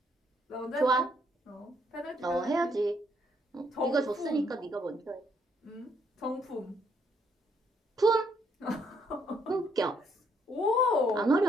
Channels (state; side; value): normal; both; correlation 0.70